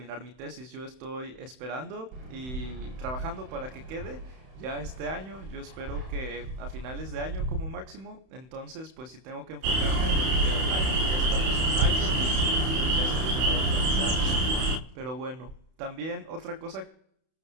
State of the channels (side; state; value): left; late; 31 ms